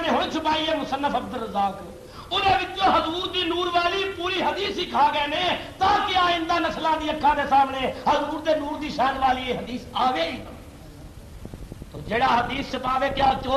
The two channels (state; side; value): identical; both; correlation 1.00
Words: نے ہوں چھپائی ہے مصنف عبد الرزاق انہوں حضور دی نور والی پوری حدیث ہی کھا گئے نے تاکہ آئندہ نسلوں کی اکھاں دے سامنے حضور دے نور دی شان والی یہ حدیث آوے ہی نہ۔ تو جڑا حدیث چھپاوے کیا